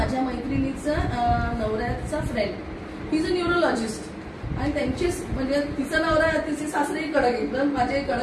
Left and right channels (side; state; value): both; identical; correlation 1.00